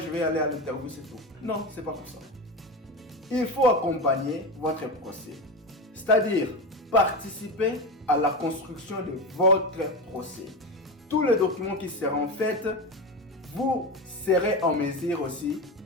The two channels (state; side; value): normal; both; correlation 0.21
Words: vais aller à l'interview, c'est tout. Non, c'est pas comme ça. Il faut accompagner votre procès. C'est-à-dire participer à la construction de votre procès. Tous les documents qui seront faits, vous serez en mesure aussi